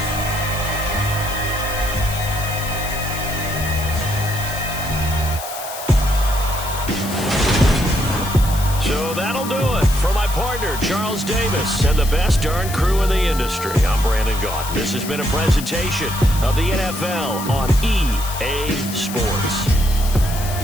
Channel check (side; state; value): left; noise; hiss, 10 dB below the sound